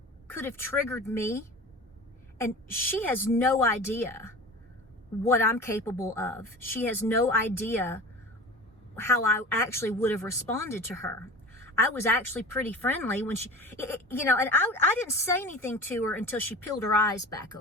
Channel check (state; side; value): normal; both; correlation 0.36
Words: could have triggered me, and she has no idea what I'm capable of. She has no idea how I actually would have responded to her. I was actually pretty friendly when she, and I didn't say anything to her until she peeled her eyes back